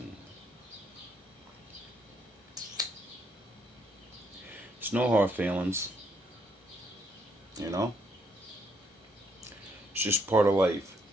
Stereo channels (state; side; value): normal; both; correlation 0.72